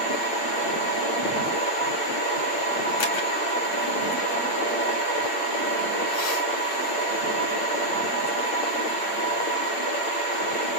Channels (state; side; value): late; right; 8.5 ms